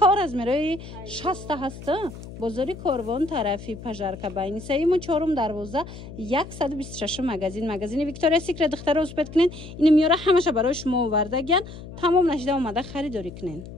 رزمیروی 60 هست بزرگی کاروان طرفی پژارکا باینی سیم و چهارم دروازه 126 مگزین ویکتوریا سیکرت دختر رو اسپت کنین این میاره همشه برای شما آوردگن تمام نشده اومده خریداری کنین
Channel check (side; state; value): left; noise; hum, 13 dB below the sound